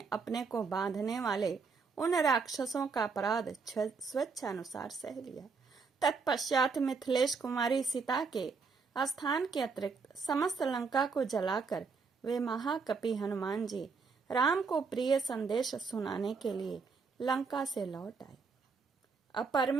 अपने को बांधने वाले उन राक्षसों का अपराध स्वेच्छानुसार सह लिया. तत्पश्चात मिथिलेश कुमारी सीता के स्थान के अतिरिक्त समस्त लंका को जलाकर वे महाकपि हनुमान जी राम को प्रिय संदेश सुनाने के लिए लंका से लौट आए.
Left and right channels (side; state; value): left; quieter; 4.9 dB